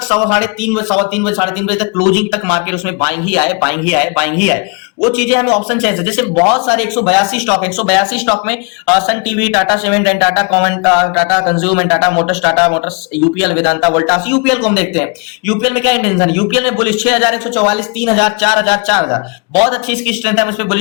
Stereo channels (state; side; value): quieter; right; 32.6 dB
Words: 3:15 बजे, 3:15 3:30 बजे तक क्लोजिंग तक मार्केट उसमें बाइंग ही आए, बाइंग ही आए, बाइंग ही आए। वो चीजें हमें ऑप्शन चाहिए। जैसे बहुत सारे 182 स्टॉक है, 182 स्टॉक में Sun TV, Tata cement and Tata कॉमेंट, Tata consume and Tata Motors, UPL, Vedanta, Voltas. UPL को हम देखते हैं, यूपीएल में क्या इंटेंशन है? यूपीएल में बुलिश 6144, 3000, 4000, 4000, बहुत अच्छी इसकी स्ट्रेंथ है। हम इस पे